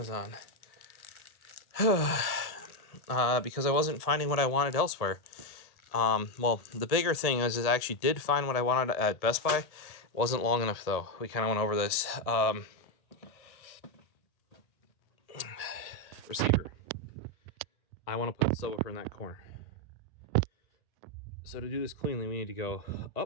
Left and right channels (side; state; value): right; late; 1.8 ms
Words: because I wasn't finding what I wanted elsewhere. Well, the bigger thing is I actually did find what I wanted at Best Buy. It wasn't long enough, though. We kind of went over this. Receiver. I want to put the subwoofer in that corner. So to do this cleanly, we need to go